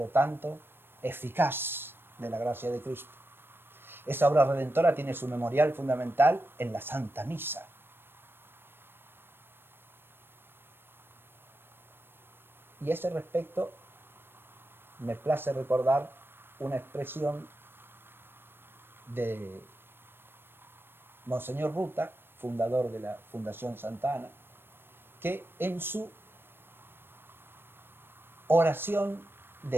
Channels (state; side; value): late; left; 0.10 ms